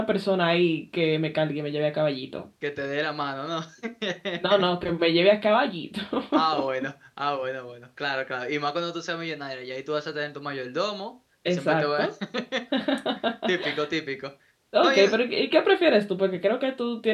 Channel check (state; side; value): identical; both; correlation 1.00